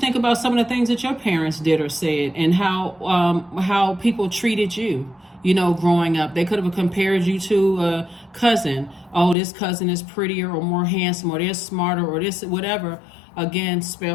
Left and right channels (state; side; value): drops out; right; at 9.3 s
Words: about some of the things that your parents did or said, and how people treated you, you know, growing up. They could have compared you to a cousin. Oh, this cousin is prettier or more handsome, or they're smarter, or this, whatever. Again,